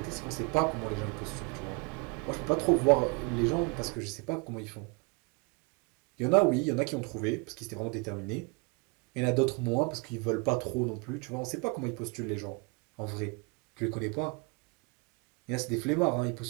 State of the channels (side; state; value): left; quieter; 30.4 dB